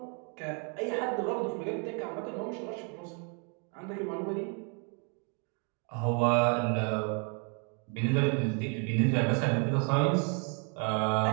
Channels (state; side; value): quieter; left; 38.5 dB